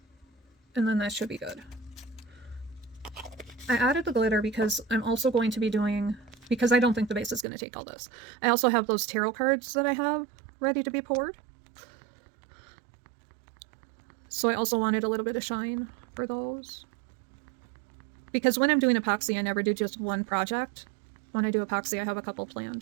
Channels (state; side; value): drops out; left; at 7.5 s